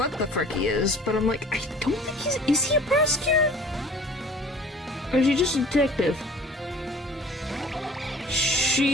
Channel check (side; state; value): both; normal; correlation 0.48